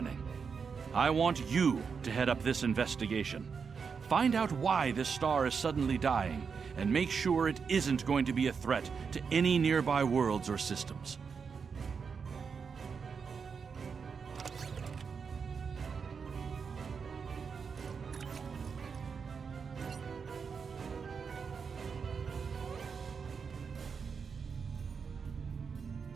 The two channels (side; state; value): left; quieter; 5.8 dB